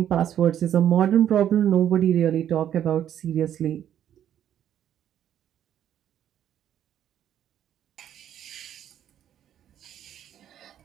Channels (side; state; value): left; quieter; 10.4 dB